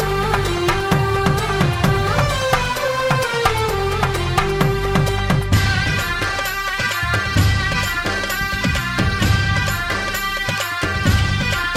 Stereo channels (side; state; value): both; identical; correlation 1.00